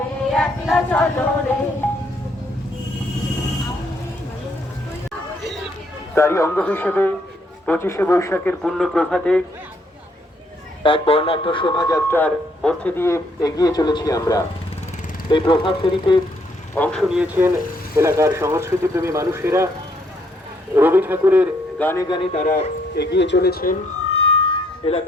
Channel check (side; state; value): both; normal; correlation 0.70